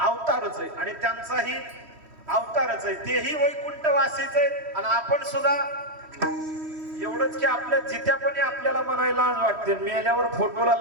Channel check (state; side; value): late; left; 3.1 ms